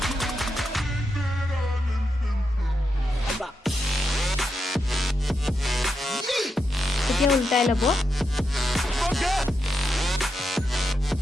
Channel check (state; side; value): normal; both; correlation 0.85